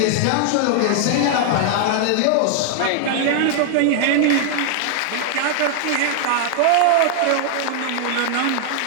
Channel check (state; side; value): different; both; correlation 0.00